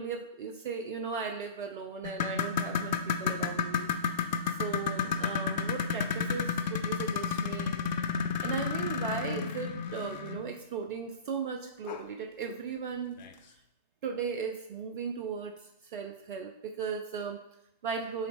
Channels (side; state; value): both; inverted; correlation -0.30